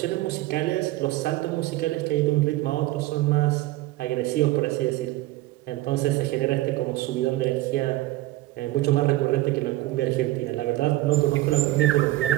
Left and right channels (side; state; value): left; quieter; 17.4 dB